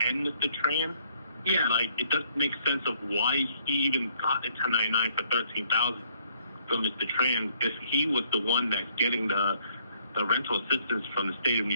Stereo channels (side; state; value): both; inverted; correlation -0.65